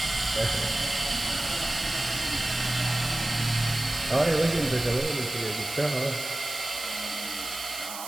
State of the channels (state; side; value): noise; right; hiss, 9 dB below the sound